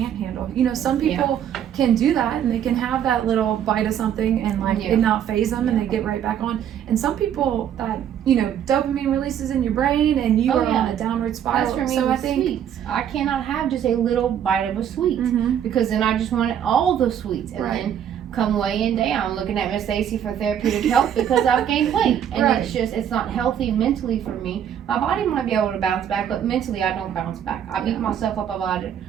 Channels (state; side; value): quieter; left; 9.5 dB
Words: handle. You know, some people can do that and they can have that little bite of something and like it not phase them and they get right back on. And some people that, you know, dopamine releases in your brain and you are on a downward spiral. That's for me so with I think sweets. I cannot have just a little bite of a sweet mm-hmm. because then I just wanted all the sweets. And then come weighing down, looking at Miss Stacy for therapeutic help because I've gained weight. And it's not healthy mentally for me. My body might be able to bounce back, but mentally I don't bounce back. I beat myself up about it